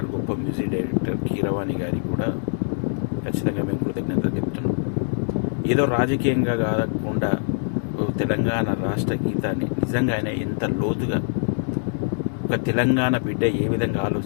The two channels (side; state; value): right; silent; digital silence